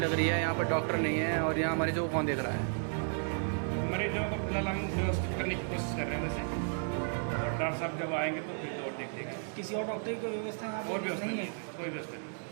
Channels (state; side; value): silent; left; 56 dB below the other